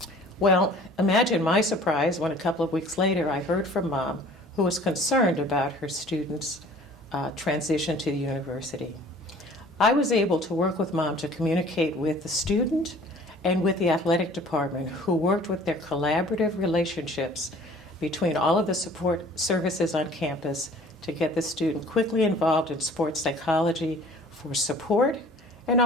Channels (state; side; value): normal; both; correlation 0.50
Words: Well, imagine my surprise when a couple of weeks later I heard from Mom, who was concerned about her student's transition to the university. I was able to work with Mom to communicate with the student and with the athletic department, who worked with their collaborative relationships between all of the support services on campus to get the student quickly involved in sports psychology for support and